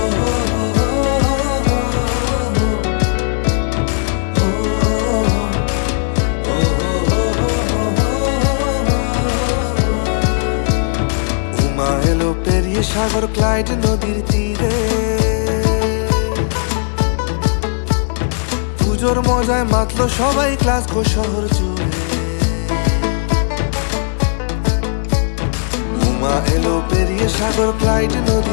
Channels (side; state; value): right; silent; 69 dB below the other